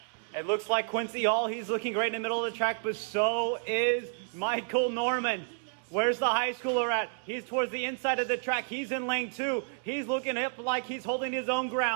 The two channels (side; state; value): left; silent; 58 dB below the other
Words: It looks like Quincy Hall. He's looking great in the middle of the track, but so is Michael Norman. Where's the high schooler at? He's towards the inside of the track. He's in lane 2. He's looking up like he's holding his own